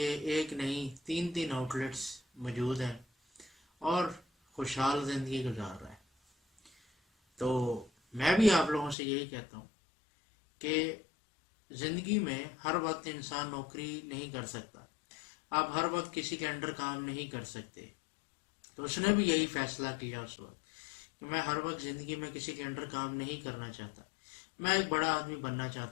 ایک نہیں 3 آؤٹ لیٹس موجود ہیں اور خوشحال زندگی گزار رہا ہے. تو میں بھی آپ لوگوں سے یہی کہتا ہوں کہ زندگی میں ہر وقت انسان نوکری نہیں کر سکتا، آپ ہر وقت کسی کے انڈر کام نہیں کر سکتے. تو اس نے بھی یہی فیصلہ کیا اس وقت کہ میں ہر وقت زندگی میں کسی کے انڈر کام نہیں کرنا چاہتا، میں ایک بڑا آدمی بننا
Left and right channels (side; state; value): right; drops out; at 9.0 s